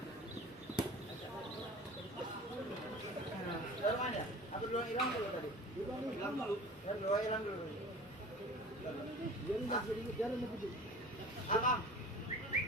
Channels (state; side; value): normal; both; correlation 0.40